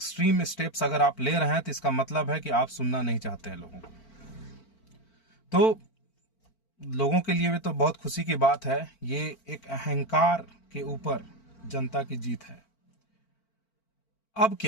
स्टेप्स अगर आप ले रहे हैं तो इसका मतलब है कि आप सुनना नहीं चाहते हैं लोगों को। तो लोगों के लिए भी तो बहुत खुशी की बात है। ये एक अहंकार के ऊपर जनता की जीत है। अब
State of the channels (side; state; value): right; late; 4.4 ms